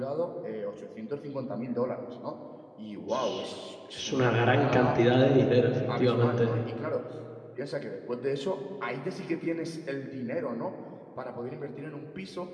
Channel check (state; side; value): identical; both; correlation 1.00